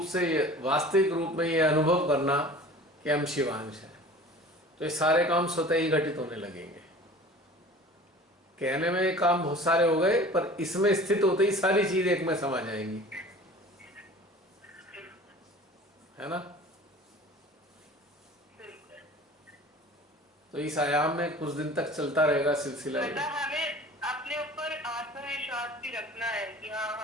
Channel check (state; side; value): normal; both; correlation 0.43